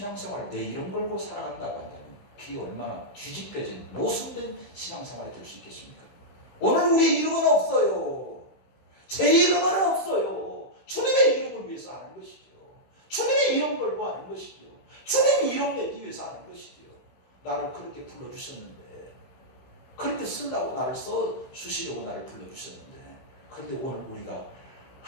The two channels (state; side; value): late; right; 15 ms